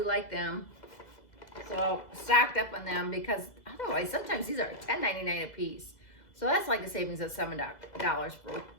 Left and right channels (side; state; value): right; late; 2.0 ms